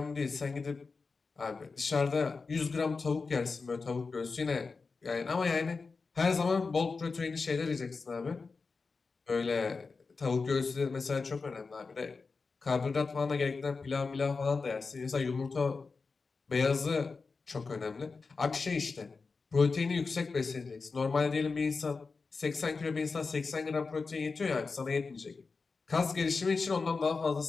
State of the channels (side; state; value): right; quieter; 4.4 dB